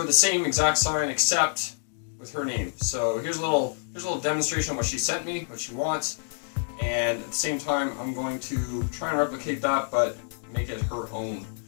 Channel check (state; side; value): silent; right; digital silence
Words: the same exact sign except with her name. So here's a little demonstration of what she sent me, what she wants. And at the same time, I'm going to try and replicate that, but make it her own.